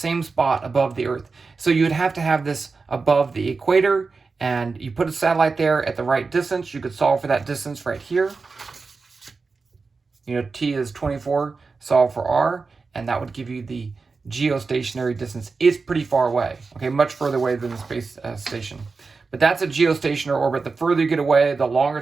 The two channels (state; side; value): quieter; left; 4.4 dB